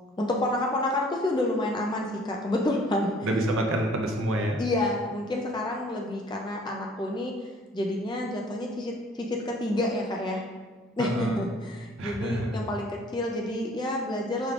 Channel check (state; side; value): normal; both; correlation 0.55